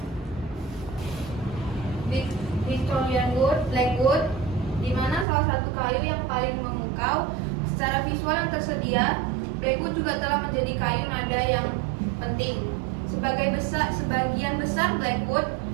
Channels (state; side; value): drops out; left; at 5.2 s